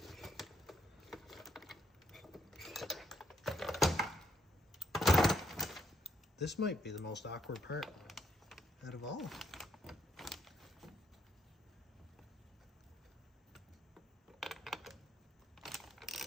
This might be the most awkward part out of all.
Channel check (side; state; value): both; normal; correlation 0.73